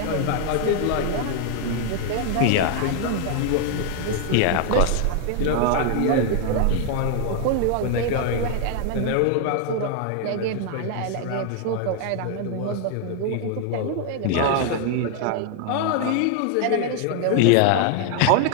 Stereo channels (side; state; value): both; different; correlation 0.00